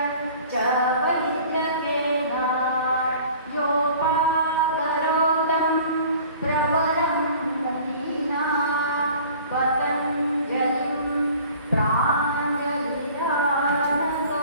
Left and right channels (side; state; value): both; inverted; correlation -0.47